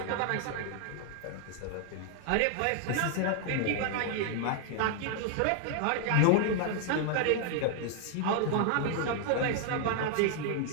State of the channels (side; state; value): both; different; correlation 0.00